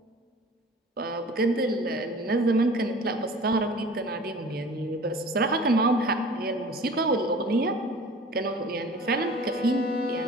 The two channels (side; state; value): both; normal; correlation 0.43